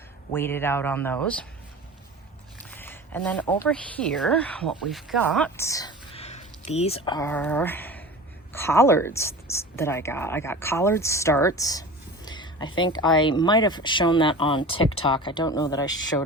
wait it out on those. And then over here, what we've got, these are collards that I got. I got collard starts. I think I might have shown that on TikTok. I don't know that I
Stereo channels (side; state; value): both; normal; correlation 0.35